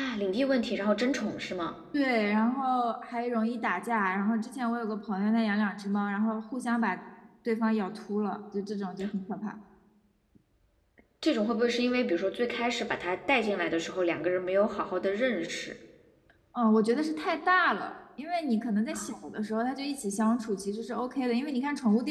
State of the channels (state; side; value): identical; both; correlation 1.00